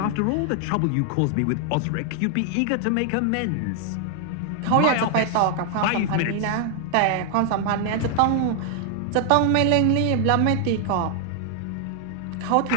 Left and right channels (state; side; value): different; both; correlation 0.00